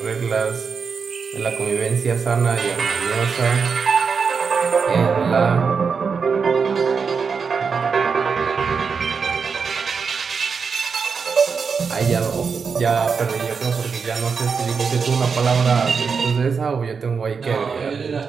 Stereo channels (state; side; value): quieter; left; 5.6 dB